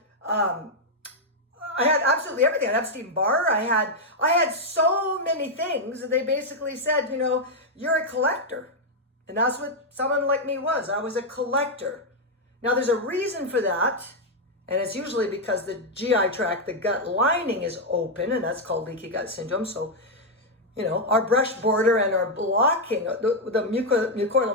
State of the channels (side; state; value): both; normal; correlation -0.01